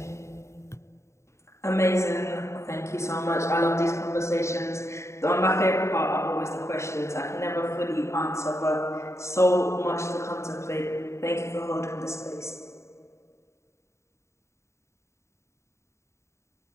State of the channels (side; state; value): right; late; 0.14 ms